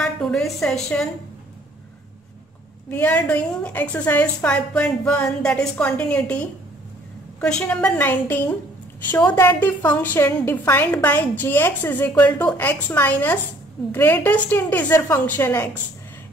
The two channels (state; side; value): normal; both; correlation 0.59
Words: today's session. We are doing exercise 5.1, that is continuity. Question number 19. Show that the function defined by gx is equal to x minus greatest integer function x